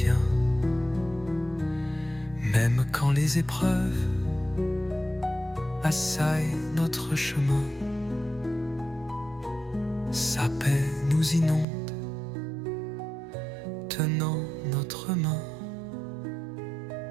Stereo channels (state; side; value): drops out; left; at 11.7 s